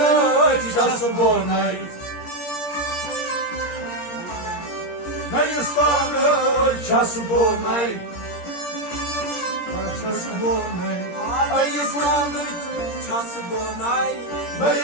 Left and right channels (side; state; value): right; late; 17 ms